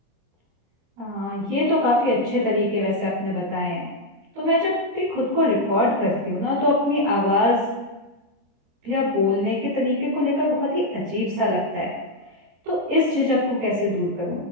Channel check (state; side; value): late; left; 25 ms